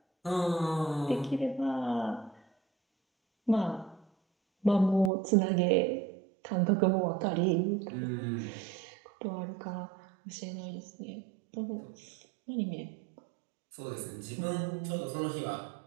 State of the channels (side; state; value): left; drops out; at 5.1 s